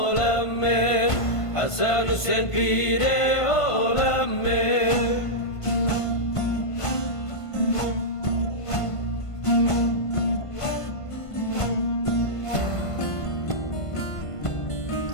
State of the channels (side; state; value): right; late; 1.5 ms